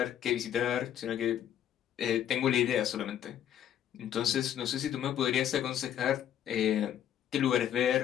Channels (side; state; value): right; quieter; 10.4 dB